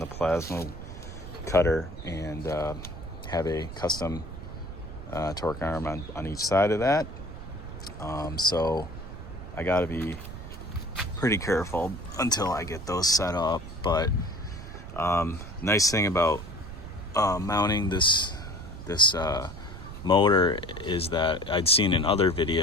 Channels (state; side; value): noise; right; rumble, 11 dB below the sound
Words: plasma cutter, and have a custom torque arm on each side of that. So I got to be pretty careful until I get those set up. But nice thing about mounting this motor is that I'd seen in other